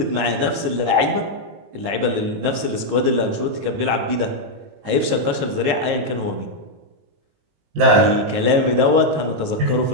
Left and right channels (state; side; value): late; left; 19 ms